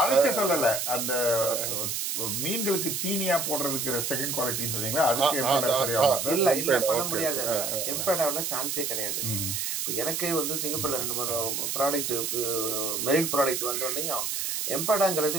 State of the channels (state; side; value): noise; right; hiss, 1 dB below the sound